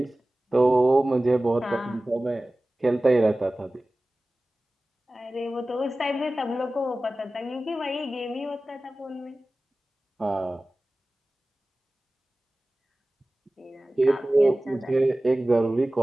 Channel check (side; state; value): both; normal; correlation 0.97